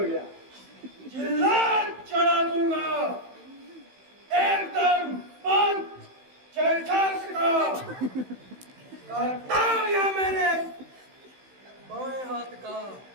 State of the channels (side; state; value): left; late; 16 ms